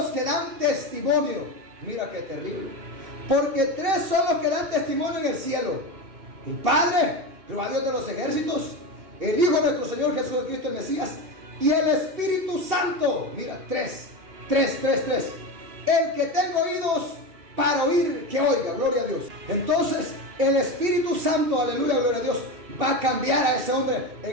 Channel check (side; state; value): left; late; 2.7 ms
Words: que dan testimonio. Mira qué terrible, porque 3 son los que dan testimonio en el cielo: el Padre, Jehová Dios de los ejércitos, el Hijo de nuestro Señor Jesucristo el Mesías, y el Espíritu Santo. Mira, 3. El que tenga oídos para oír, que oiga. Gloria a Dios. Entonces el Espíritu Santo, aleluya, gloria a Dios, va a cambiar a ese hombre